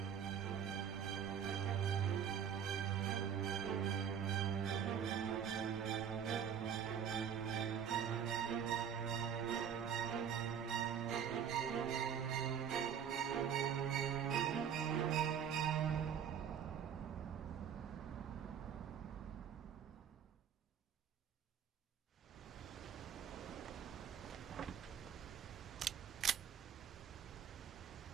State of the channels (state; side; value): quieter; left; 8.2 dB